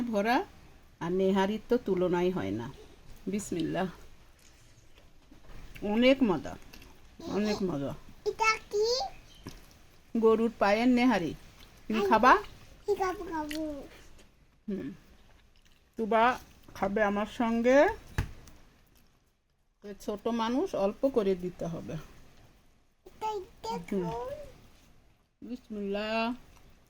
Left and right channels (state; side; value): identical; both; correlation 1.00